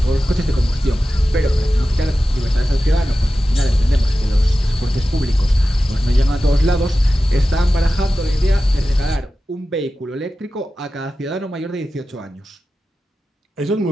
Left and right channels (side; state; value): both; normal; correlation 0.94